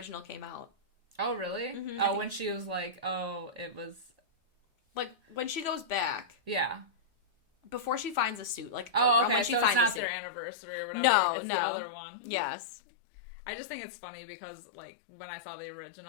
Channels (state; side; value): drops out; right; at 10.0 s